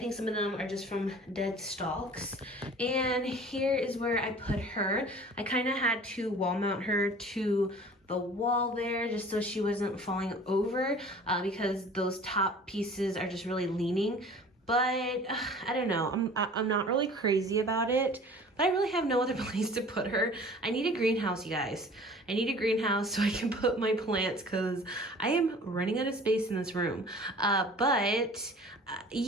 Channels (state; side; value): normal; both; correlation 0.46